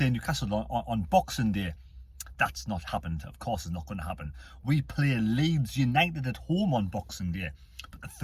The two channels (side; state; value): both; identical; correlation 1.00